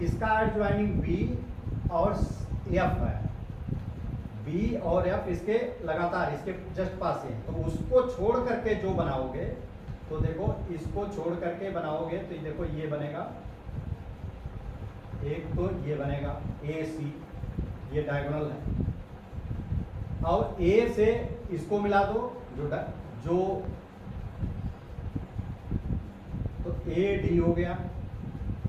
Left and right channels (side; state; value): both; identical; correlation 1.00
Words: इसका एडजॉइनिंग बी और एफ है, बी और एफ इसके लगातार इसके जस्ट पास है, तो उसको छोड़ करके जो बनाओगे, तो देखो इसको छोड़ करके बनाओगे तो देखो ये बनेगा, एक तो ये बनेगा ए सी, ये डायगोनल है। और ए से इसको मिला दो, जो तो ए डी हो गया,